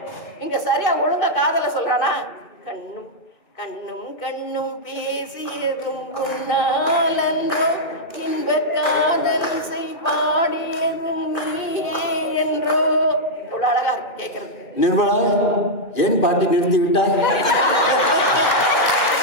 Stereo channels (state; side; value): late; right; 2.5 ms